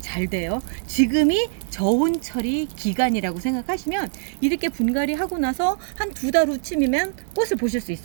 잘 돼요. 지금이 저온처리 기간이라고 생각하시면 이렇게 분갈이 하고 나서 한 2달 후쯤이면 꽃을 보실 수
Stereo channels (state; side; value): silent; left; digital silence